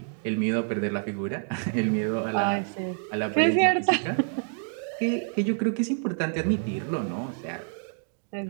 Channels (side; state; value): left; silent; 60 dB below the other